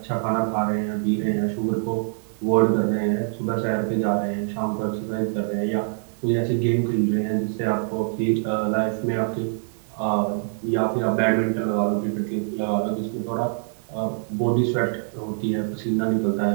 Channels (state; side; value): silent; left; digital silence